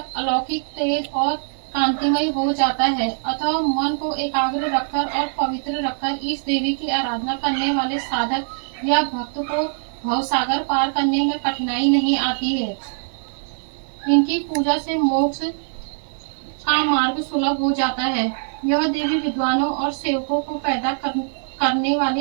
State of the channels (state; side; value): silent; left; 64 dB below the other